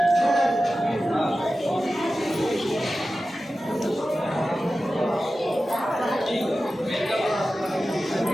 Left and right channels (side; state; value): both; normal; correlation 0.94